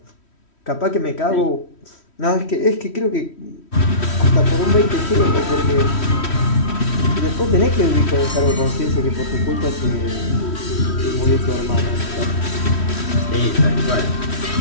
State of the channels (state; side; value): late; right; 3.1 ms